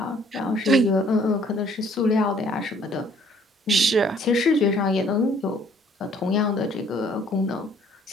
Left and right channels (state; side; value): normal; both; correlation 0.60